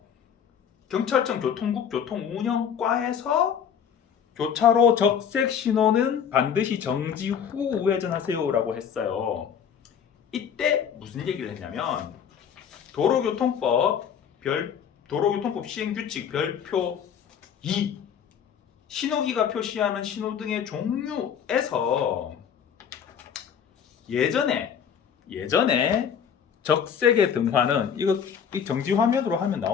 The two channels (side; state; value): right; quieter; 7.9 dB